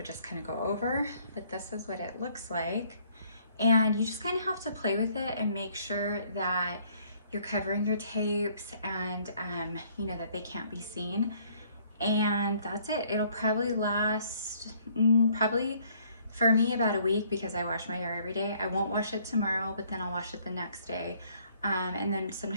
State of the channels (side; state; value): both; inverted; correlation -0.63